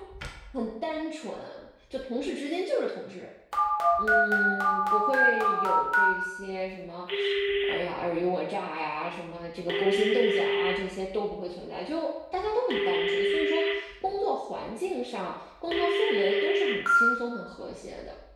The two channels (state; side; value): identical; both; correlation 1.00